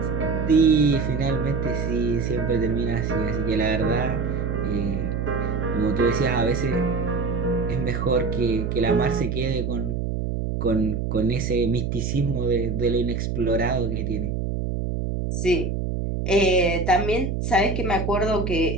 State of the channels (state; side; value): noise; right; hum, 1 dB below the sound